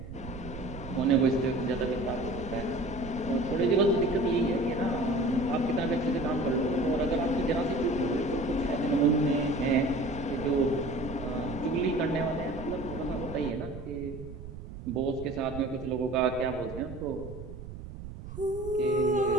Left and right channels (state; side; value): noise; right; rumble, 11 dB below the sound